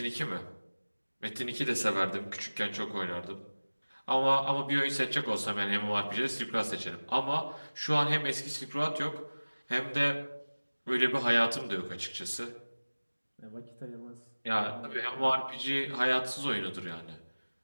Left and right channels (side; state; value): both; inverted; correlation -1.00